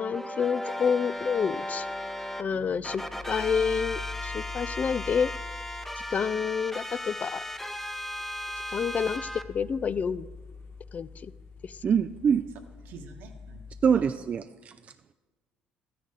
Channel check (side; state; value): both; normal; correlation 0.77